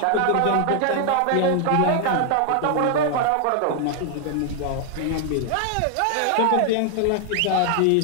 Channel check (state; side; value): different; both; correlation 0.00